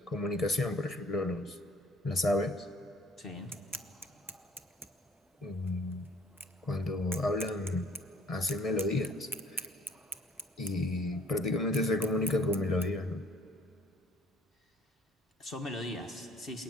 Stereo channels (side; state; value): both; normal; correlation 0.57